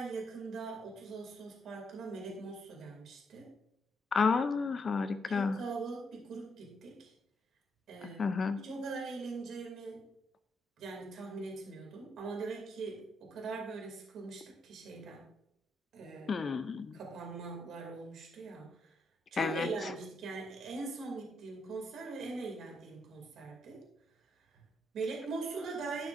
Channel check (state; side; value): normal; both; correlation 0.78